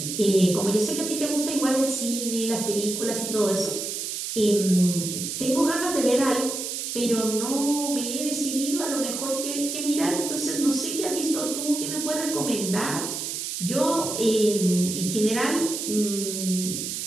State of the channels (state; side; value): noise; right; hiss, 4 dB below the sound